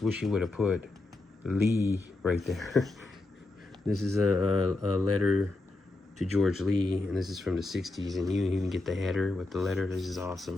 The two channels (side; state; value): right; quieter; 3.0 dB